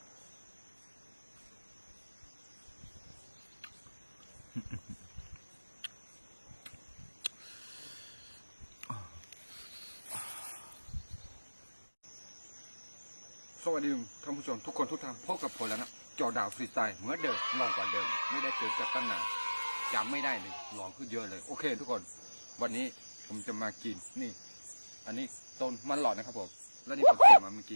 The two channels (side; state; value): both; inverted; correlation -1.00